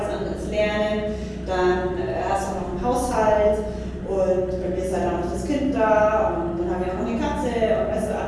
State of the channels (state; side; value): identical; both; correlation 1.00